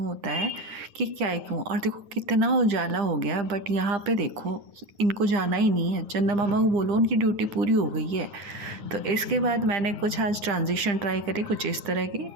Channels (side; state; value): left; late; 9.9 ms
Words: है कि क्या ही कहूँ। और देखो कितना उजाला हो गया, बट यहाँ पे देखो इनको जाना ही नहीं है। चंदा मामा को बोलो, उनकी ड्यूटी पूरी हो गई है। तो इसके बाद मैंने कुछ आज ट्रांजिशन ट्राई करी कुछ इस तरह की।